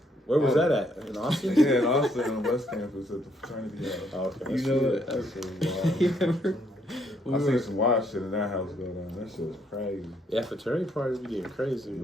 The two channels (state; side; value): normal; both; correlation 0.71